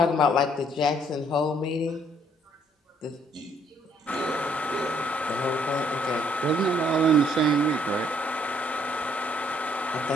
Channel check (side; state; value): both; normal; correlation 0.66